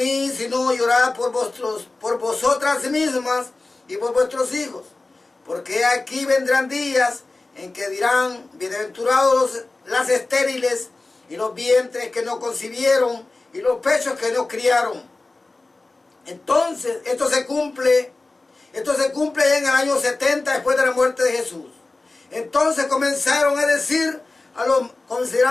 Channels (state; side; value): quieter; right; 3.3 dB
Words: sino llorad por vosotras mismas y por vuestros hijos. Porque aquí vendrán días en que dirán: bienaventurados las estériles y los vientres que no concibieron y los pechos que no criaron. Entonces, esto se cumple ya en el año 70 después de la muerte de Jesús. Entonces comenzaron a decir a